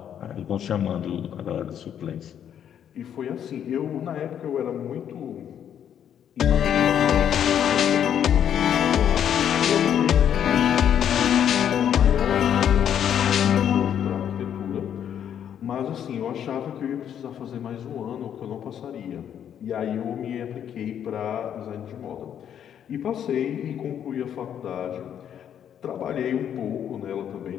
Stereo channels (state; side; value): quieter; right; 9.3 dB